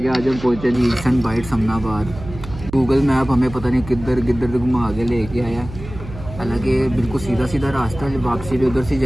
आज हम पहुँचे जी सन बाइट समनाबाद। गूगल मैप हमें पता नहीं किधर घुमा के लेके आया। हालांकि बिल्कुल सीधा रास्ता है, वापसी भी उधर से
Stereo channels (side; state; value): right; noise; hum, 13 dB below the sound